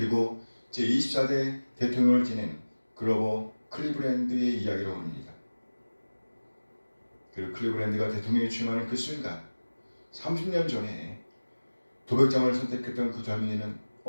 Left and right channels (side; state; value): both; inverted; correlation -1.00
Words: 제24대 대통령을 지낸 그로버 클리브랜드의 이야기로 합니다. 그리고 클리브랜드가 대통령에 취임하는 그 순간 30년 전에 도백장을 선택했던 그 젊은이는